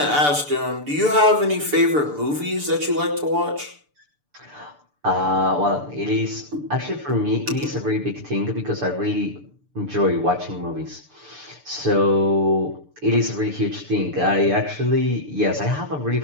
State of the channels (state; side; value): late; left; 6.8 ms